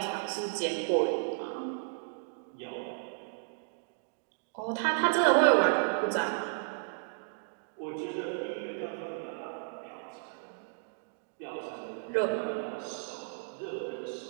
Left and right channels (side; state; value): left; silent; digital silence